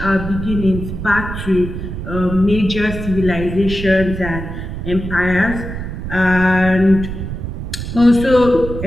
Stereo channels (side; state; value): right; noise; rumble, 7 dB below the sound